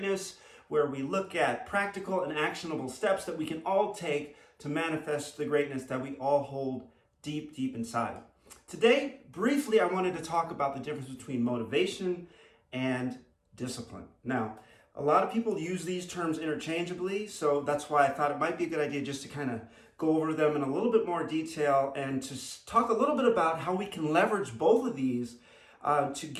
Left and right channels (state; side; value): identical; both; correlation 1.00